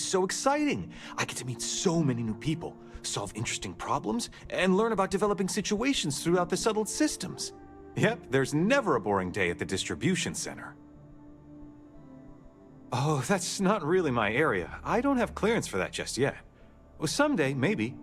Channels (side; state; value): both; identical; correlation 1.00